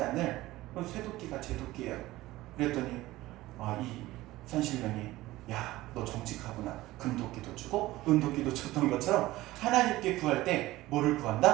않을 쇠도끼가 제 도끼예요. 그랬더니 이 산신령이 야, 너 정직하구나. 금도끼도 주고 은도끼도 줬던 것처럼 하나님께 구할 때 뭐를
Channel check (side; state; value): left; quieter; 17.6 dB